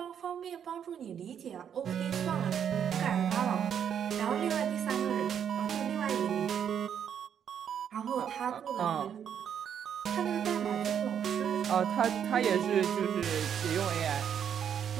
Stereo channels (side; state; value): left; quieter; 8.5 dB